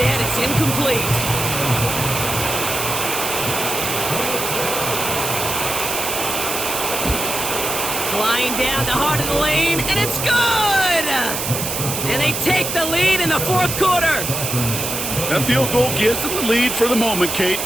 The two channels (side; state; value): right; noise; hiss, 3 dB below the sound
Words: it's incomplete. Flying down the heart of the lane, and it's good! And they take the lead in the 4th quarter. That field goal gives them the lead for the moment, Kate,